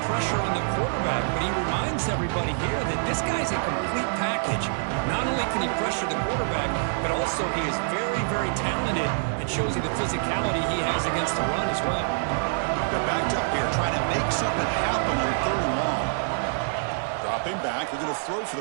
pressure on the quarterback, but he reminds everybody here that this guy's a complete package. Not only can he pressure the quarterback, but also he is very, very talented and shows you the physicality he has against the run as well. They're backed up here trying to make something happen on 3rd and long. Dropping back, they're going to throw for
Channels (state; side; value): silent; left; 55 dB below the other